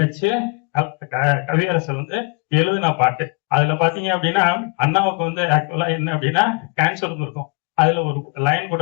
கவியரசர் வந்து எழுதின பாட்டு. அதுல பாத்தீங்க அப்படின்னா அண்ணாவுக்கு வந்து ஆக்சுவலா என்ன அப்படின்னா கேன்சர் இருக்கும். அதுல ஒரு லைன் கூட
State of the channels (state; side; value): quieter; right; 32.7 dB